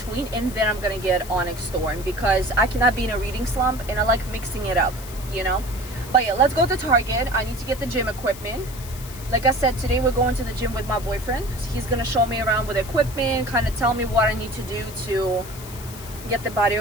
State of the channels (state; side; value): noise; left; hiss, 15 dB below the sound